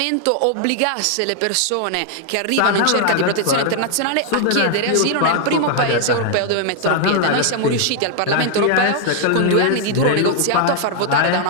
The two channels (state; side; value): different; both; correlation 0.00